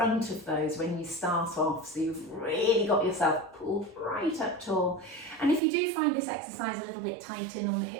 of those when you start off, so you've really got yourself pulled right up tall. And if you do find this exercise a little bit tight in on the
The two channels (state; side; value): drops out; left; at 5.6 s